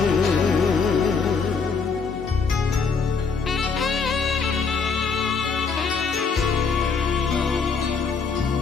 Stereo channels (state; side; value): quieter; right; 5.2 dB